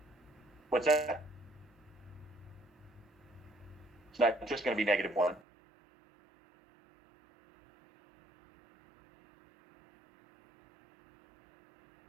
What's that? It's not just going to be negative 1.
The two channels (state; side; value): drops out; left; at 5.4 s